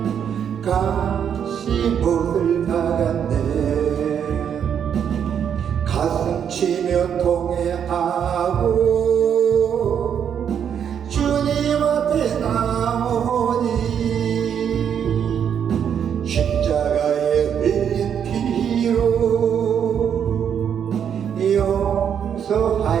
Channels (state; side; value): quieter; left; 8.3 dB